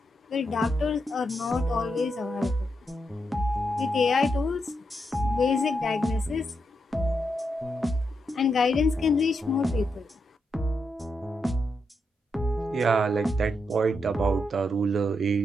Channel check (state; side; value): normal; both; correlation 0.83